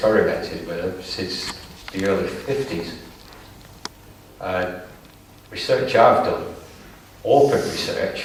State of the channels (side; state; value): both; identical; correlation 1.00